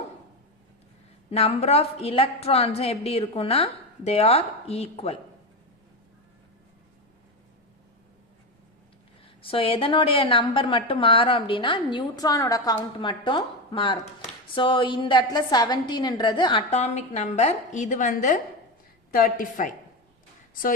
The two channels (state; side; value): normal; both; correlation 0.16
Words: நம்பர் ஆஃப் எலக்ட்ரான்ஸும் எப்படி இருக்குன்னா தே ஆர் ஈக்குவல். ஸோ எதனுடைய நம்பர் மட்டும் மாறும் அப்படின்னா நியூட்ரானோட கவுண்ட் மட்டும் மாறும். ஸோ இந்த இடத்துல 17ன்றது அட்டாமிக் நம்பர், இது வந்து 35. ஸோ